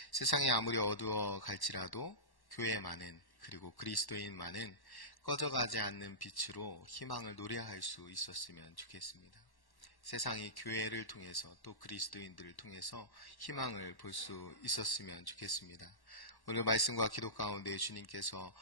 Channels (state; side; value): late; right; 1.1 ms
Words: 세상이 아무리 어두워 갈지라도 교회만은, 그리고 그리스도인만은 꺼져가지 않는 빛으로 희망을 노래할 수 있었으면 좋겠습니다. 세상이 교회를 통해서 또 그리스도인들을 통해서 희망을 볼 수 있었으면 좋겠습니다. 오늘 말씀과 기도 가운데 주님께서